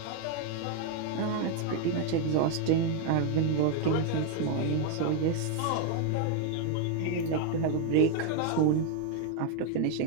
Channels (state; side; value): different; both; correlation 0.01